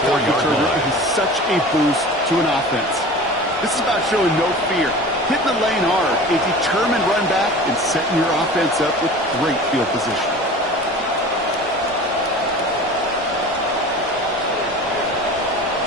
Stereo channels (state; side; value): normal; both; correlation 0.38